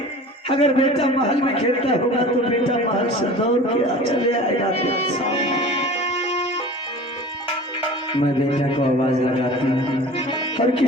अगर बेटा महल में खेलता होगा तो बेटा महल से दौड़ के चले आएगा। मैं बेटा को आवाज लगाती हूँ और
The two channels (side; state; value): both; normal; correlation 0.40